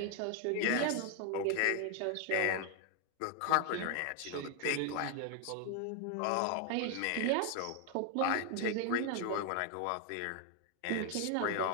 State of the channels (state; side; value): different; both; correlation 0.00